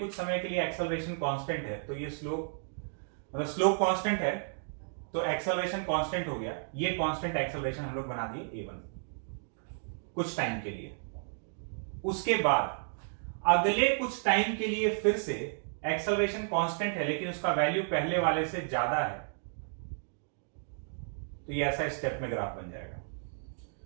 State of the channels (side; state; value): left; silent; digital silence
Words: समय के लिए एक्सेलरेशन कांस्टेंट है, तो ये स्लोप, मतलब स्लोप कांस्टेंट है, तो एक्सेलरेशन कांस्टेंट हो गया, ये कांस्टेंट एक्सेलरेशन हम लोग बना दिए a1 कुछ टाइम के लिए। उसके बाद अगले कुछ टाइम के लिए फिर से एक्सेलरेशन कांस्टेंट है लेकिन उसका वैल्यू पहले वाले से ज्यादा है, तो ये ऐसा स्टेप में ग्राफ बन जाएगा।